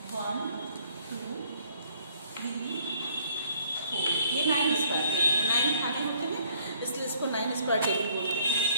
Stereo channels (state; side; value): inverted; both; correlation -0.63